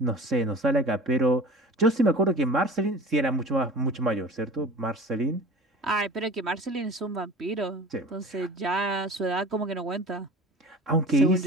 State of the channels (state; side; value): normal; both; correlation 0.40